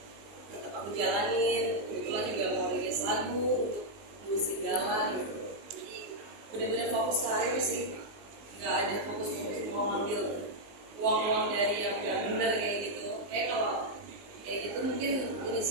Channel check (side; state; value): left; late; 19 ms